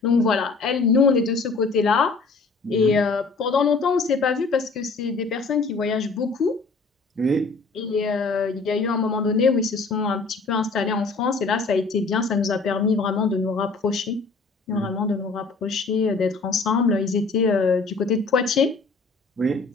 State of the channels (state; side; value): quieter; right; 4.1 dB